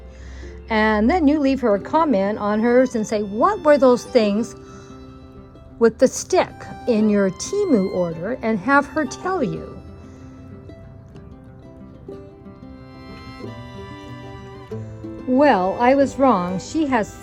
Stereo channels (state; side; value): identical; both; correlation 1.00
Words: And then you leave her a comment on hers and say, what were those things with the stick in your Temu order, and have her tell you. Well, I was wrong. She has